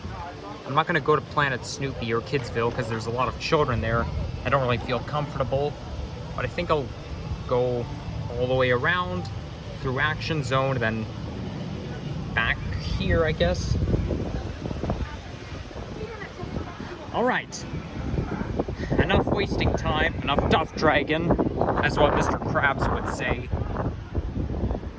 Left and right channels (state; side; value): identical; both; correlation 1.00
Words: I'm not gonna go to Planet Snoopy or Kidsville because there's a lot of children there. I don't really feel comfortable, but I think I'll go all the way around through Action Zone, then back here, I guess. All right, enough wasting time, enough duff dragon, as what Mr. Krabs would say.